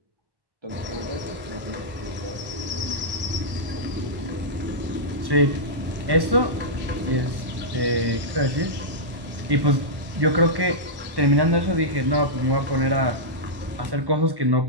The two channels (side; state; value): left; late; 1.1 ms